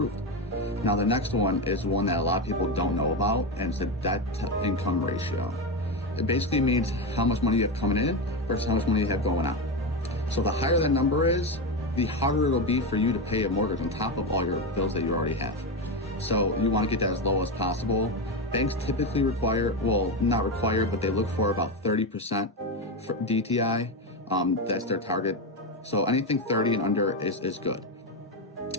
Now, the next one is one that a lot of people don't know about, and it's the debt-to-income ratio. It basically means how much money you have coming in versus how much money you have going out. So the higher that number is, the harder it'll be for you to pay a mortgage on top of all your bills that you already have. So you want to get that as low as possible. Banks typically not require, but they look for about 30% for DTI. That's their target. So anything 30 and under is good.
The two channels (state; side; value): normal; both; correlation 0.13